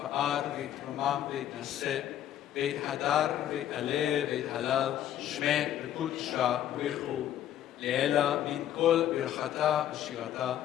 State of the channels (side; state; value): right; quieter; 11.3 dB